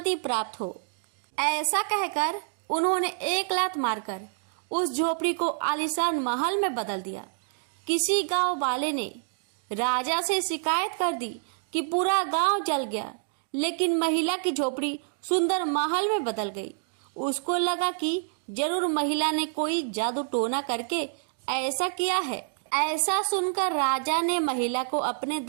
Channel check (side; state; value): left; silent; digital silence